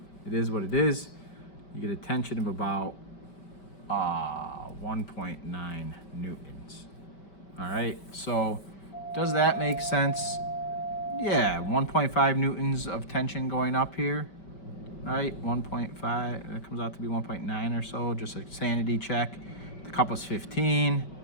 it is what it is. You get a tension of about 1.9 newtons. All right, so does that make sense? Yeah, 1.5 newtons of tension going up here, right? 1.5, that comes out to be 1.9 or so, just a sanity check. The cup was 15.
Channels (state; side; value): late; right; 5.2 ms